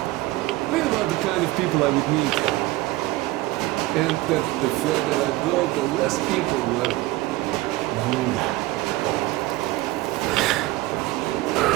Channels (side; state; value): left; quieter; 18.4 dB